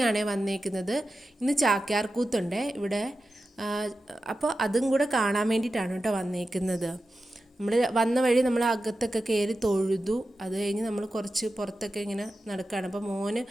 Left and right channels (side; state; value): both; normal; correlation 0.92